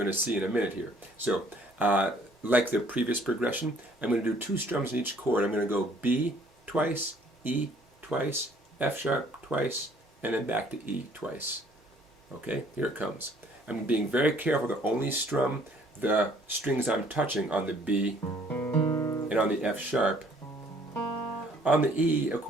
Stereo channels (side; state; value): both; normal; correlation 0.60